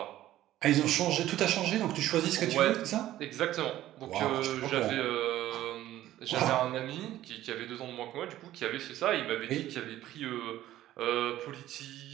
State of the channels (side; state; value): left; quieter; 14.0 dB